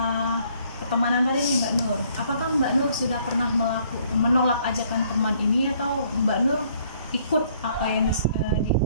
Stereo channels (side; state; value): both; inverted; correlation -0.64